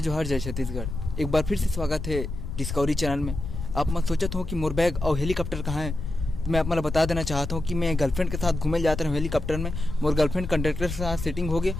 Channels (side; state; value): left; noise; rumble, 6 dB below the sound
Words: जोहार, जय छत्तीसगढ़। एक बार फिर से स्वागत है डिस्कवरी चैनल में। आप मत सोचत हो कि मोर बैग और हेलीकॉप्टर कहाँ है। तो मैं आप मतलब बता देना चाहता हूँ कि मैं गर्लफ्रेंड के साथ घूमे जाता हूँ हेलीकॉप्टर में। मोर गर्लफ्रेंड कंडक्टर के साथ सेटिंग हो गई